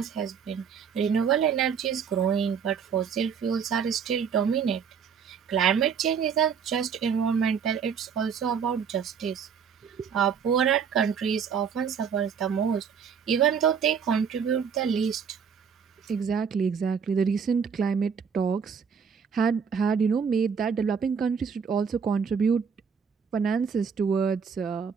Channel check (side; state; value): left; quieter; 6.7 dB